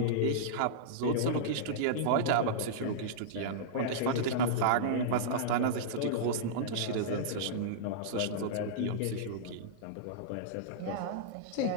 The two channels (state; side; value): different; both; correlation -0.03